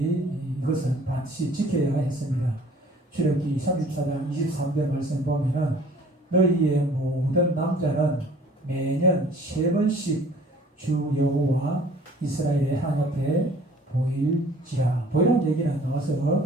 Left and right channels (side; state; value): both; normal; correlation 0.52